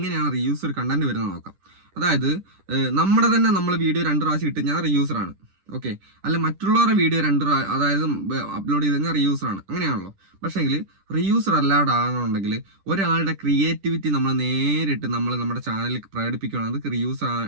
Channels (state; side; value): late; left; 10 ms